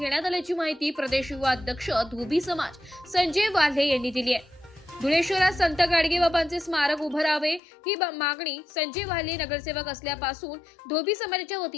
आल्याची माहिती प्रदेश युवा अध्यक्ष धोबी समाज संजय वाल्हे यांनी दिली आहे। धुळे शहरात संत गाडगे बाबांचे स्मारक उभं राहावे ही मागणी संजय वाल्हे नगरसेवक असल्यापासून धोबी समाजाच्या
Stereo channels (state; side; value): drops out; right; at 7.6 s